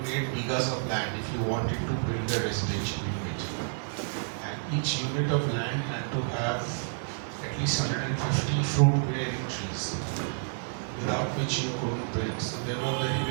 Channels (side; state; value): left; silent; 58 dB below the other